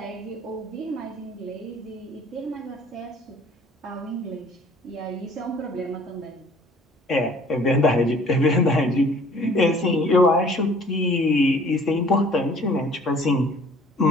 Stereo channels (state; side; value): normal; both; correlation 0.53